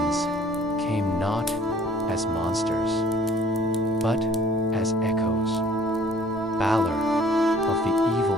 came not as monsters, but as echoes. Balor of the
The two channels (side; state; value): both; normal; correlation 0.54